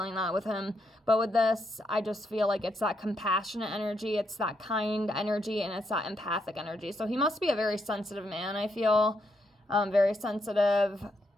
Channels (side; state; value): both; normal; correlation 0.78